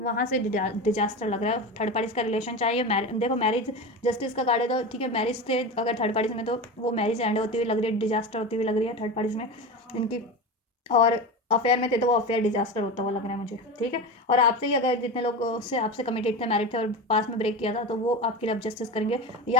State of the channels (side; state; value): both; normal; correlation 0.25